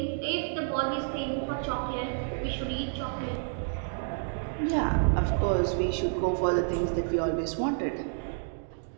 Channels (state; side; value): silent; left; digital silence